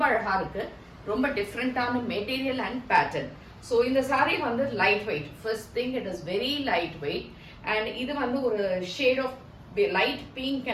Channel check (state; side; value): identical; both; correlation 1.00